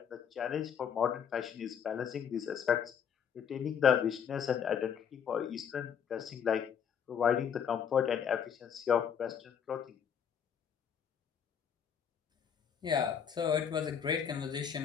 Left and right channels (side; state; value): right; quieter; 7.9 dB